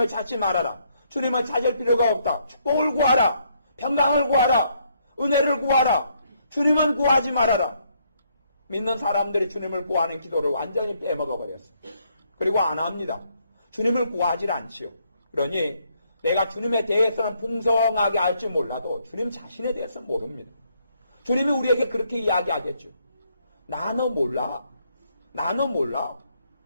찾지 말아라. 주님을 찾을 필요가 없다. 축복을 구하라. 평강을 구하라. 은혜를 구하라. 주님은 구하지 말아라. 믿는 사람들이 주님을 구하는 기도를 완전히 빼먹어버렸습니다. 그리고 안 합니다. 주님을 구하지 않지요. 그러니 내가 주님에 대해서는 풍성하게 알지 몰라도 주님 자신에 대해서 모릅니다. 주님이 우리에게 그렇게 이야기하겠죠. 나는 몰라.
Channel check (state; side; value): inverted; both; correlation -0.72